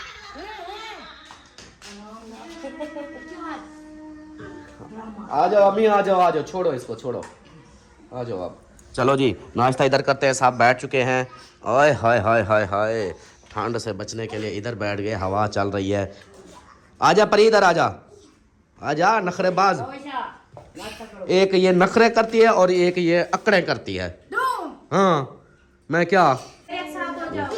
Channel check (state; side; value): identical; both; correlation 1.00